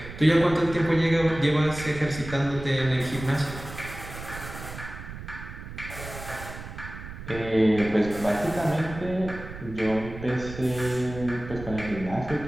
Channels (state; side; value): noise; right; rumble, 11 dB below the sound